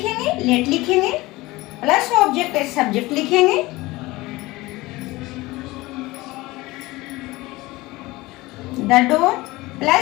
लेट लिखेंगे प्लस ऑब्जेक्ट एज सब्जेक्ट लिखेंगे, द डोर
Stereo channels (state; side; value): quieter; right; 20.3 dB